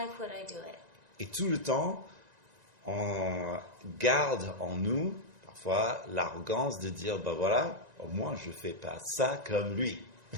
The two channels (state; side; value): late; left; 1.9 ms